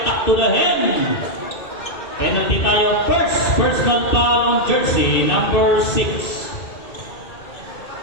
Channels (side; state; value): right; late; 2.6 ms